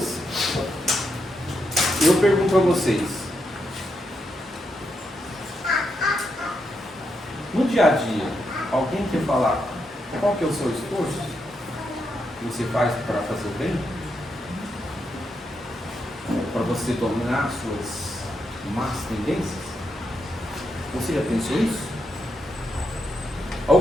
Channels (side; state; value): both; normal; correlation 0.82